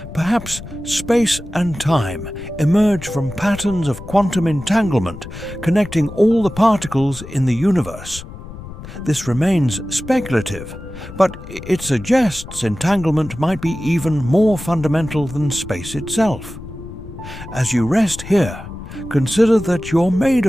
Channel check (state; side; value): noise; left; rumble, 13 dB below the sound